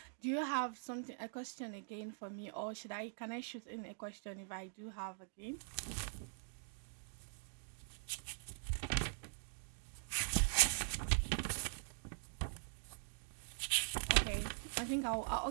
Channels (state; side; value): silent; left; digital silence